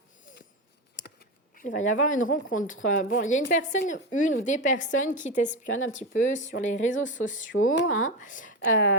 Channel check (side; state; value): both; normal; correlation 0.16